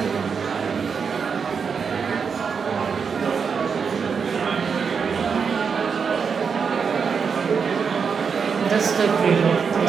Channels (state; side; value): quieter; left; 6.0 dB